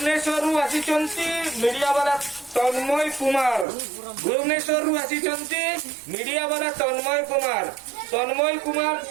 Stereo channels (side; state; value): left; drops out; at 3.7 s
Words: media वाला तन्मय Kumar Bhubaneswar आसिचंती media वाला तन्मय कुमार